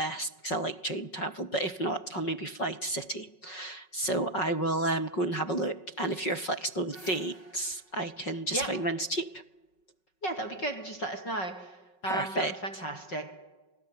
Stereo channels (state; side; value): late; right; 5.4 ms